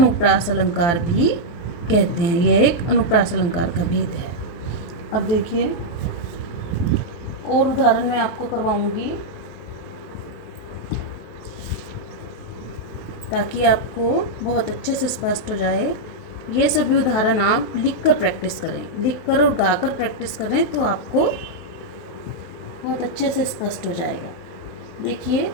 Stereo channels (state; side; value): late; right; 23 ms